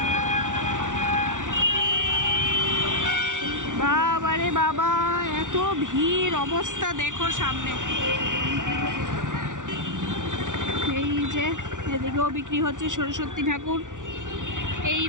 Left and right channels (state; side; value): late; left; 0.87 ms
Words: বাবারে বাবা, এত ভিড়, অবস্থা দেখো সামনে। এই যে এদিকেও বিক্রি হচ্ছে সরস্বতী ঠাকুর, এই